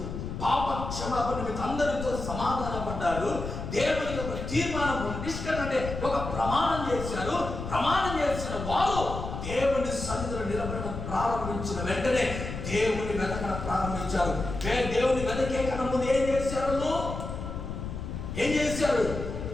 పాప క్షమాపణ అందరితో సమాధాన పడ్డారు, దేవుని ఒక తీర్మానం నిష్కరణ అంటే ఒక ప్రమాణం చేశారు. ప్రమాణం చేసిన వారు దేవుని సన్నిధిలో నిలబడడం ప్రారంభించిన వెంటనే దేవుని వెతకడం ప్రారంభించారు. దేవుని వెతకే కన్నా ముందు ఏం చేశారు?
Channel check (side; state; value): left; noise; rumble, 6 dB below the sound